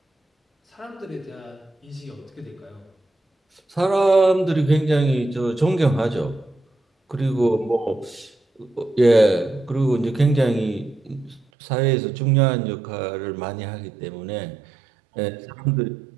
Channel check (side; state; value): left; drops out; at 11.5 s